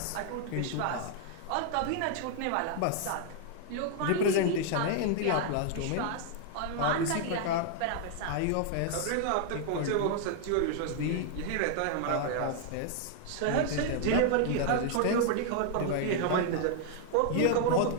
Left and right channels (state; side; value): different; both; correlation 0.00